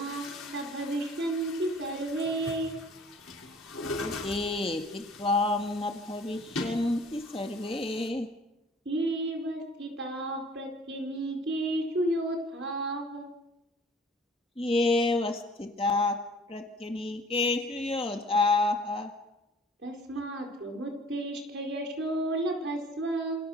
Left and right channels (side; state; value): both; normal; correlation 0.51